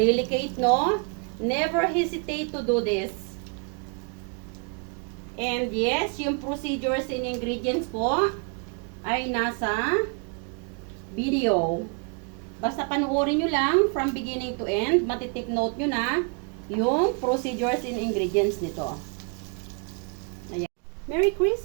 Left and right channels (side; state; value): left; quieter; 37.2 dB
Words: no? Never hesitate to do this. And yes, yung procedures and ingredients po ay nasa video. Basta panuorin nyo lang from beginning to end. Matitake note nyo na yung procedures and ingredients nito. Ayan. Merry